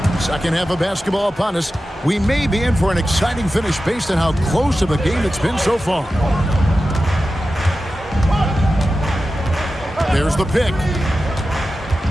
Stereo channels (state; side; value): normal; both; correlation 0.93